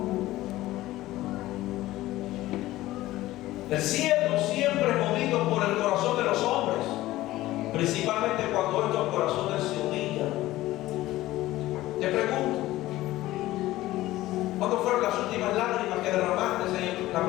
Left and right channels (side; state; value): right; quieter; 16.4 dB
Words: El cielo siempre es movido por el corazón de los hombres, principalmente cuando estos corazones se humillan. Te pregunto, ¿cuándo fueron las últimas lágrimas que derramaste en la